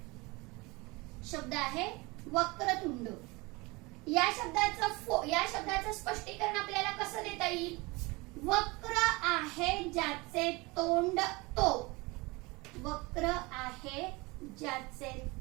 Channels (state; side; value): quieter; left; 24.7 dB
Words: शब्द आहे वक्रतुंड. या शब्दाचं स्पष्टीकरण आपल्याला कसं देता येईल, वक्र आहे ज्याचे तोंड तो. वक्र आहे ज्याचे